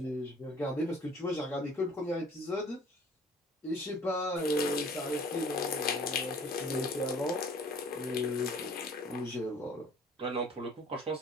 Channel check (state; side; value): normal; both; correlation 0.51